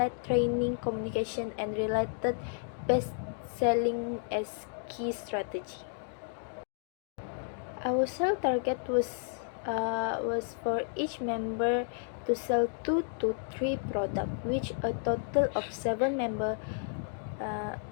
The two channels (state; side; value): silent; right; digital silence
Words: training, communication, and related best selling as key strategy. Our sale target was for each member to sell 2 to 3 products, which a total of 7 members